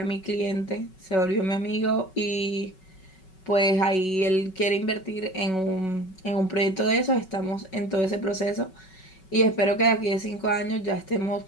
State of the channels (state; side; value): late; right; 5.3 ms